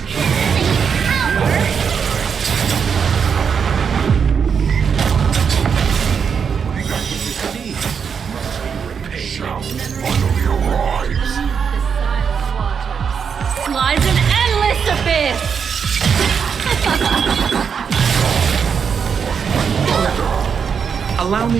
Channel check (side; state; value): left; quieter; 6.6 dB